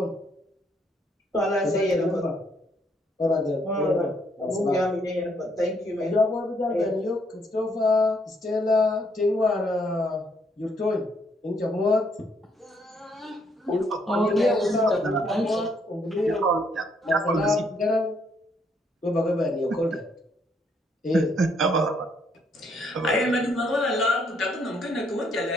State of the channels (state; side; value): normal; both; correlation 0.71